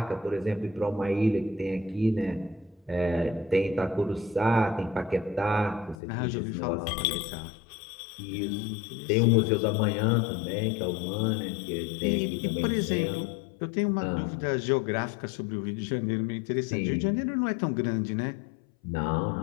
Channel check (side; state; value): right; drops out; at 6.0 s